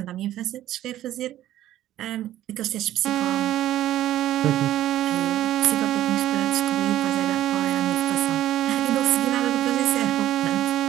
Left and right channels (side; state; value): left; quieter; 13.3 dB